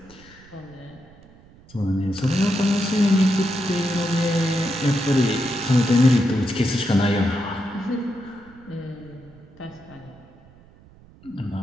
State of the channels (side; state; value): right; noise; rumble, 25 dB below the sound